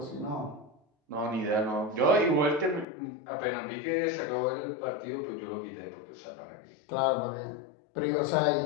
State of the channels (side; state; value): right; drops out; at 2.9 s